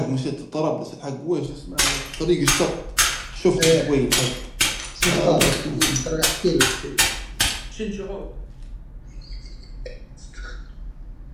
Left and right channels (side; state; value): both; identical; correlation 1.00